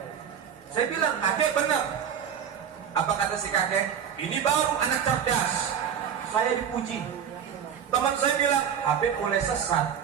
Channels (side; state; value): left; quieter; 8.2 dB